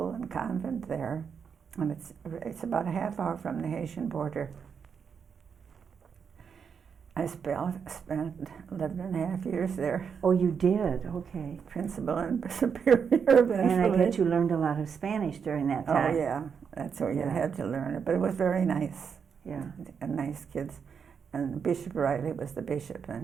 and convent there. And it's about a half hour from the Haitian border. I spent 11.5 years there. Oh, you did? Okay. Principal and superior eventually. And I bet you learned a lot of Spanish during that time. Oh, yeah. That's where you had to learn it. But it was very nice. Yeah. And nice kids. And Bishop Riley was the bishop,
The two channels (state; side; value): quieter; left; 6.6 dB